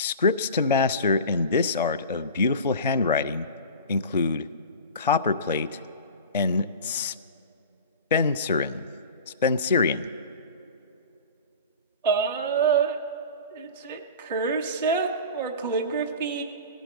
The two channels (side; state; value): both; inverted; correlation -0.34